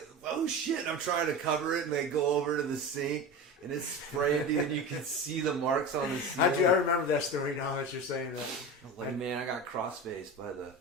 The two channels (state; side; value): normal; both; correlation 0.28